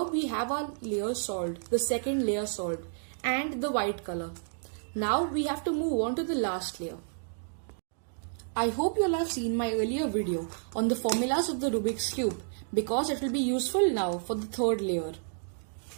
we have our layer solved, the second layer solved, and the white color. Now we have to move on to the last layer. I hope you all have seen my earlier video on the formulas of the Rubik's Cube, because it will be useful now for the third layer.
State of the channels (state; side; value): silent; left; digital silence